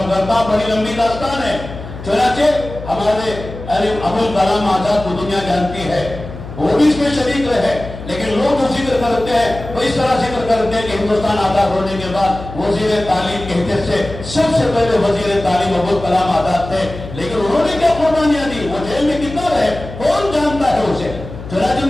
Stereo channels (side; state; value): left; noise; hum, 12 dB below the sound